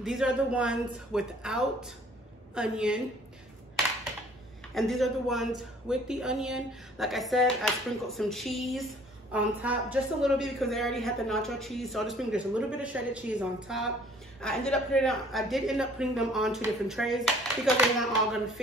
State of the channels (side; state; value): both; normal; correlation 0.55